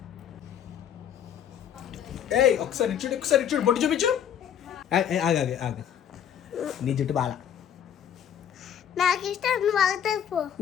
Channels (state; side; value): quieter; right; 9.2 dB